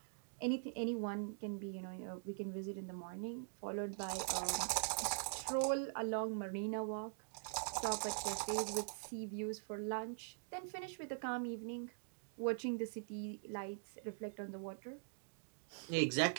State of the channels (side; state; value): left; silent; digital silence